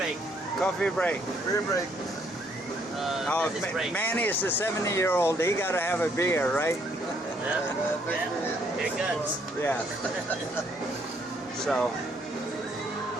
coffee break. Beer break. Oh, Business break. Manny is the 70-year-old. He got to have a beer, right? Yeah. Yeah. Here guns. Yeah. So,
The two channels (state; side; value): normal; both; correlation 0.68